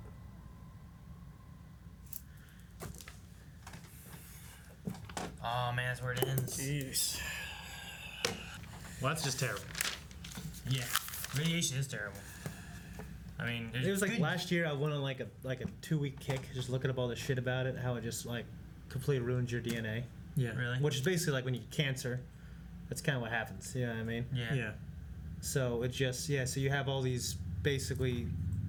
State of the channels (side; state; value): both; identical; correlation 1.00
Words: Oh man, that's where it ends. Jeez. Well, that's just terrible. Yeah, radiation is terrible. I mean, there's It was like good- last year I went on like a 2-week kick just looking up all the shit about it, how it just like completely ruins your DNA. Yeah. Really? Which is basically like when you get cancer. That's kind of what happens. You know what I mean? Yeah. Yeah. So it just so you have all these basically